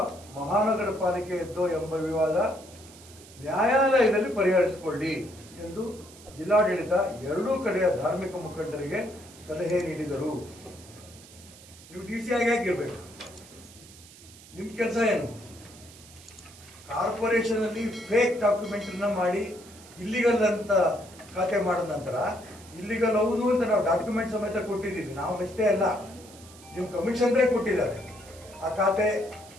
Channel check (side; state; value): right; noise; hiss, 21 dB below the sound